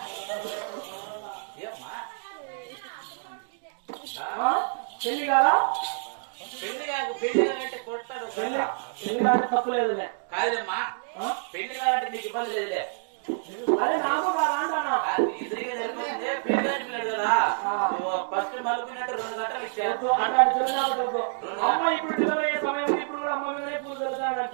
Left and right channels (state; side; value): silent; left; digital silence